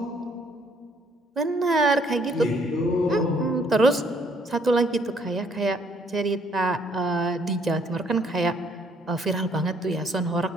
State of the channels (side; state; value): both; normal; correlation 0.65